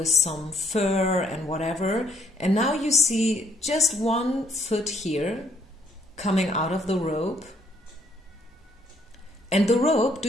some fur and whatever. And now you see just one foot here coming out of the robe. And the robe, do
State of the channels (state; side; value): normal; both; correlation 0.67